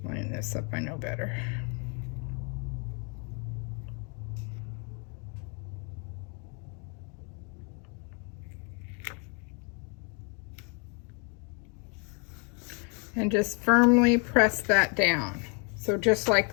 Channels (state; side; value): quieter; right; 36.4 dB